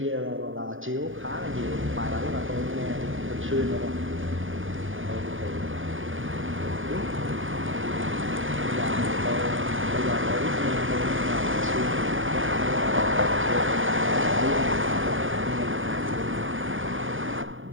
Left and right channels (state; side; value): late; left; 0.58 ms